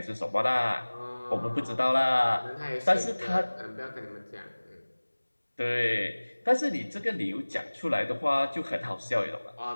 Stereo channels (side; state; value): both; inverted; correlation -1.00